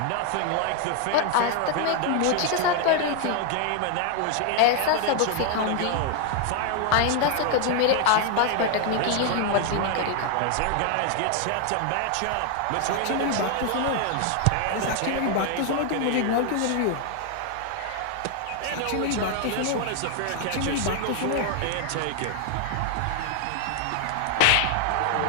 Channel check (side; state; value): both; different; correlation 0.00